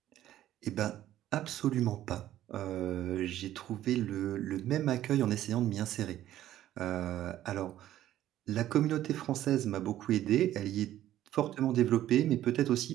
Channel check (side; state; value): left; quieter; 12.9 dB